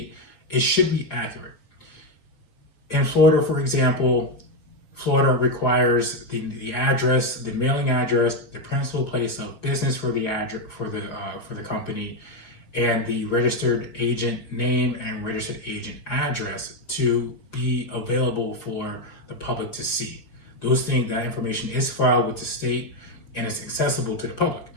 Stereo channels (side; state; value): right; late; 4.8 ms